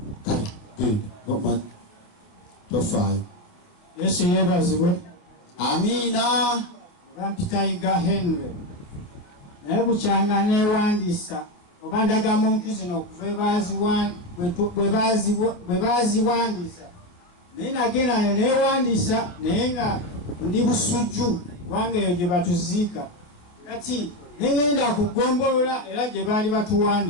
kale genda tofaayo. Yesu yeebazibwe. Amiina. Bampitayiga Henry naye bukyanga neewandiisa oba ndagamuntu zino okuva bwe baaziwandiisa naye nagenda neewandiisa naye nga ndi busujju kubanga eyo gye batuziika kati negenda kugombolola era gye baali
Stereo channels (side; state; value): right; late; 28 ms